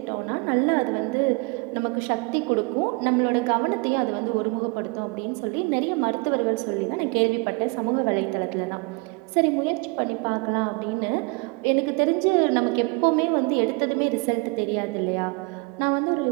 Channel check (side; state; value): left; quieter; 28.9 dB